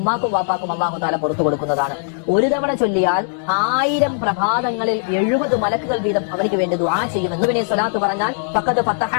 വാപ്പാക്കും അല്ലാഹു തആല പുറത്തു കൊടുക്കുന്നതാണ്. ഒരു തവണ ചൊല്ലിയാൽ 1000 പ്രഭാതങ്ങളിൽ 70 മലക്കുകൾ വീതം അവർക്ക് വേണ്ടി ദുആ ചെയ്യുമെന്ന് ഇവനെ സ്വലാത്ത് പറഞ്ഞാൽ ഫഖദ് ഫതഹ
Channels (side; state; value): right; silent; 64 dB below the other